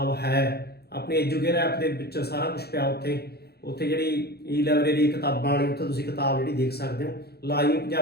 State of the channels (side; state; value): right; late; 0.46 ms